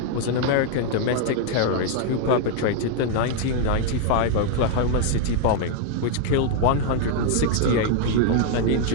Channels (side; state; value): both; different; correlation 0.00